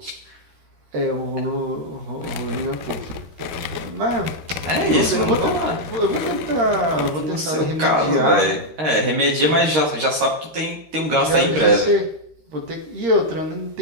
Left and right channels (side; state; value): left; late; 13 ms